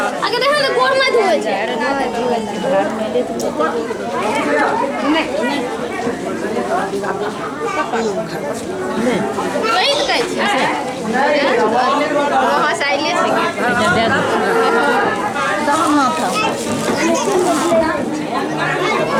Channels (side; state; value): both; identical; correlation 1.00